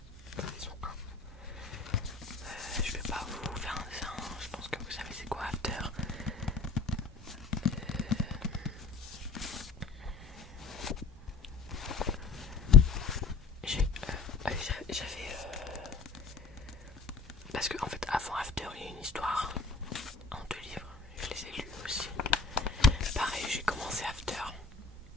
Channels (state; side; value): quieter; right; 4.6 dB